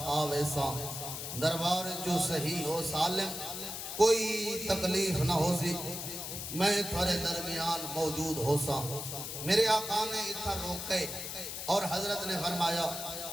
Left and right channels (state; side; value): noise; left; hiss, 6 dB below the sound